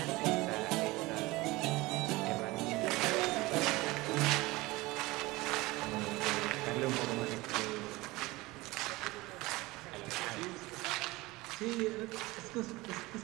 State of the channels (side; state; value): left; quieter; 20.9 dB